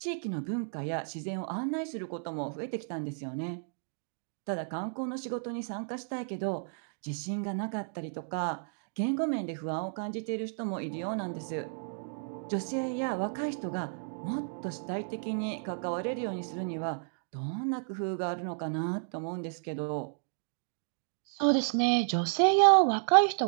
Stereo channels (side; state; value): left; silent; digital silence